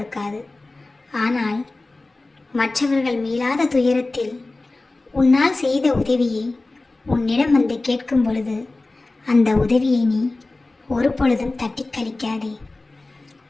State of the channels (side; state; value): right; quieter; 3.1 dB